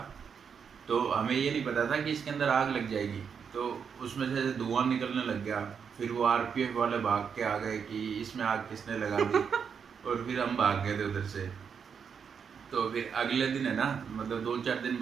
तो हमें ये नहीं पता था कि इसके अंदर आग लग जाएगी। तो उसमें से धुआं निकलने लग गया। फिर वो आरपीएफ वाले भाग के आ गए कि इसमें आग किसने लगा दी। और फिर हम भाग गए थे उधर से। तो फिर अगले दिन है ना, मतलब 2-4 दिन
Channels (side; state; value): left; quieter; 6.8 dB